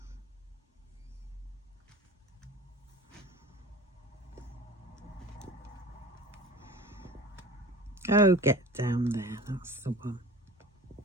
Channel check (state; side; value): normal; both; correlation 0.39